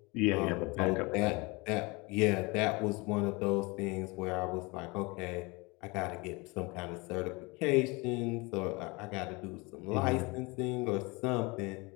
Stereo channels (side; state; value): right; quieter; 26.3 dB